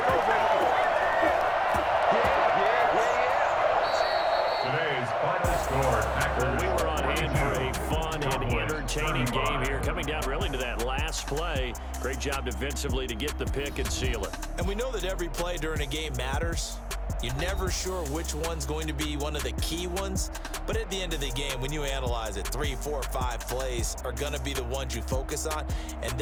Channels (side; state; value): both; identical; correlation 1.00